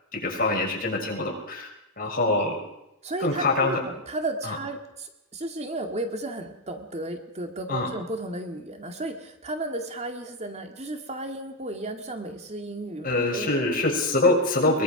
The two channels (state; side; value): normal; both; correlation 0.05